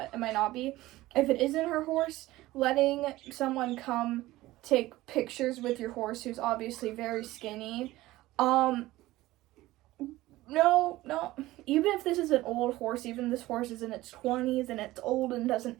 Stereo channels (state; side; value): quieter; left; 17.5 dB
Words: it might not be. If it isn't her horse, letting someone come take pictures with your horse who's obviously very skinny, no, even if this is an old horse, even this horse is in its 20s and it's old and doesn't